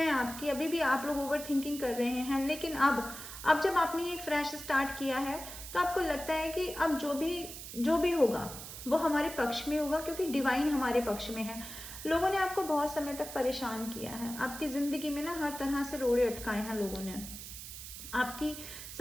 आपकी, अभी भी आप लोग ओवर थिंकिंग कर रहे हैं, लेकिन अब जब आपने एक फ्रेश स्टार्ट किया है तो आपको लगता है कि अब जो भी होगा वो हमारे पक्ष में होगा, क्योंकि डिवाइन हमारे पक्ष में है। लोगों ने आपको बहुत समय तक परेशान किया है, आपकी ज़िंदगी में ना हर तरह से रोड़े अटकाए हैं लोगों ने। आपकी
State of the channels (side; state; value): right; noise; hiss, 11 dB below the sound